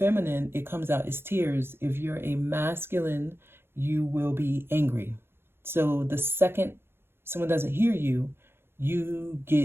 it comes out as tears. If you're a masculine, you will be angry. So the second someone doesn't hear you, you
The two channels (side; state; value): left; late; 0.11 ms